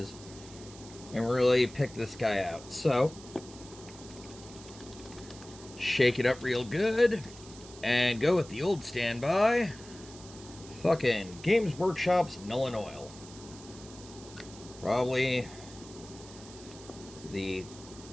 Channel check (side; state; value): right; noise; hiss, 18 dB below the sound